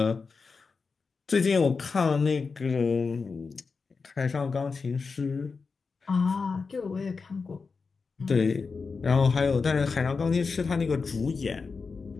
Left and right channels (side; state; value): right; quieter; 4.8 dB